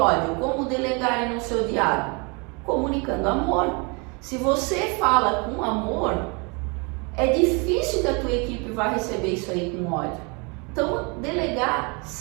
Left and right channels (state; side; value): quieter; left; 31.3 dB